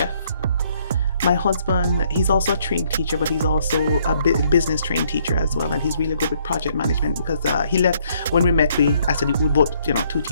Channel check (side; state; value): both; inverted; correlation -0.67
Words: My husband, he's also a trained teacher, but he's also a business trained teacher as well. And he's really good with project management, because he left, when we met, I said, we both, two